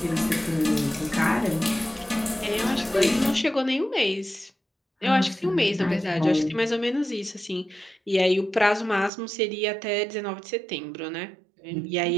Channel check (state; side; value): drops out; left; at 9.1 s